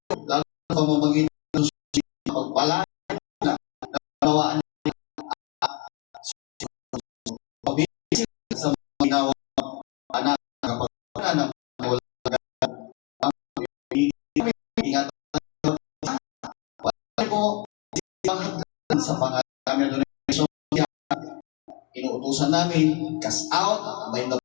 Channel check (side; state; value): right; quieter; 27.2 dB